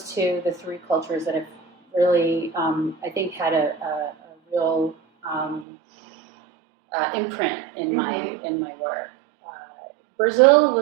to the 3 cultures that have really, I think, had a real imprint in my work. Brazil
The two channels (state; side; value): drops out; left; at 5.7 s